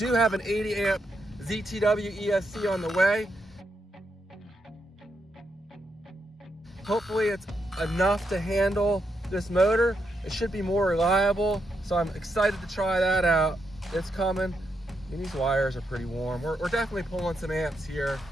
have an 80 amp ZTW ESC on the way. Hopefully it's enough to handle this motor. It should be more reliable, so I'm excited to try that out. It's coming. And these wires are pretty warm. We're definitely pulling some amps here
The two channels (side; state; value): both; normal; correlation 0.82